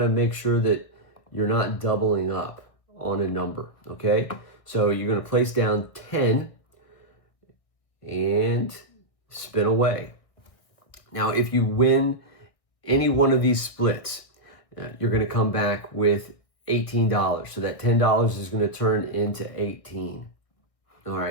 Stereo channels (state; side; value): late; right; 1.6 ms